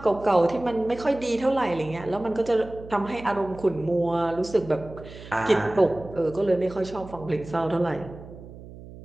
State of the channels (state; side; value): noise; right; hum, 16 dB below the sound